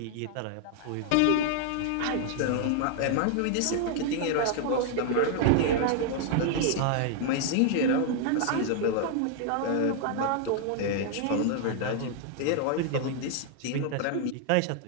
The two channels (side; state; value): both; different; correlation 0.00